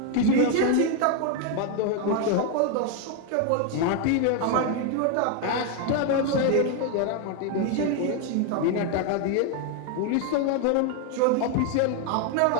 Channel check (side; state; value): both; different; correlation 0.01